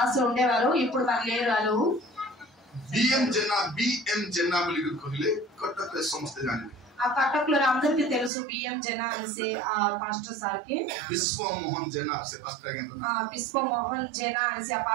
ఉండేవారు, ఇప్పుడు మరి లేరు వాళ్ళు. बीएम जेना बोली कहले कटक रे समस्त जाने. ఆ కటక్ లో అందరికీ తెలుసు बीएम जेना से ఆ పాస్టర్ సార్ కి. विश्व मोहन जेना से पास्टर के विश्व मोहन जेना से ఆ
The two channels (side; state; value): left; drops out; at 8.3 s